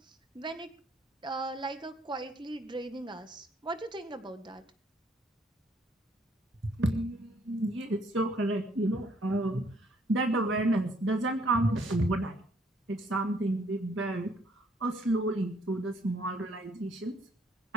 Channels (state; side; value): normal; both; correlation 0.66